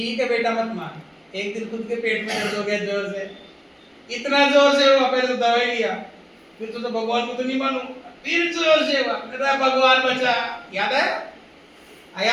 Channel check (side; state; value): both; identical; correlation 1.00